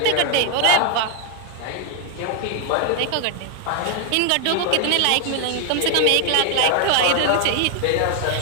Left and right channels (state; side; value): different; both; correlation 0.01